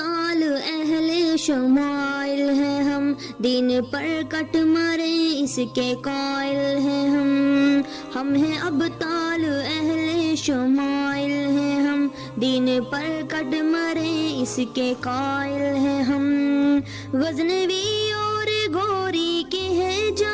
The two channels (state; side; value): identical; both; correlation 1.00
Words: اہل شمائل ہیں ہم، دین پر کٹ مرے اس کے قائل ہیں ہم ہیں ابطال اہل شمائل ہیں ہم، دین پر کٹ مرے اس کے قائل ہیں ہم۔ غزنوی اور گوری کے ہیں